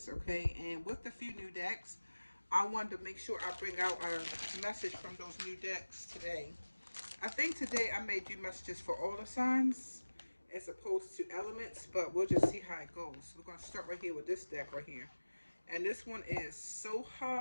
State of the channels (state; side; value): inverted; both; correlation -1.00